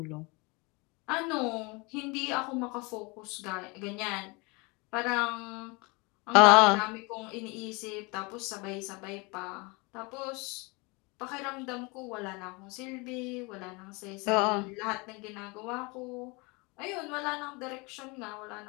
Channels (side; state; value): right; quieter; 27.7 dB